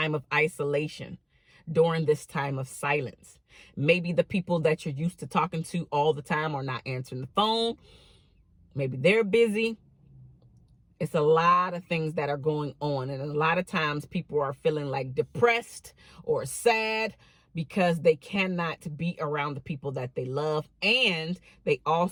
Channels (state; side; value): identical; both; correlation 1.00